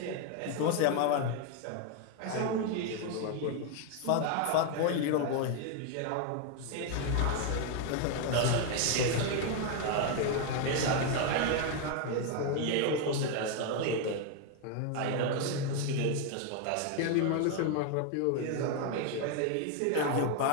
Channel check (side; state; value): both; different; correlation 0.01